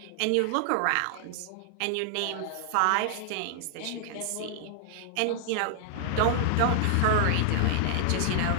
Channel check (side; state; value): both; different; correlation 0.00